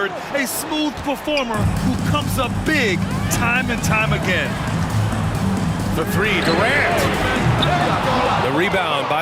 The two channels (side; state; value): both; identical; correlation 1.00